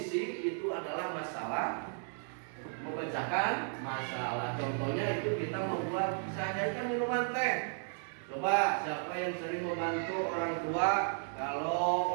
itu adalah masalah memecahkan masalah. Contohnya itu kita membuat sehari-hari minuman teh. Coba siapa yang sering membantu orang tua kalau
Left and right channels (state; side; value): silent; left; 55 dB below the other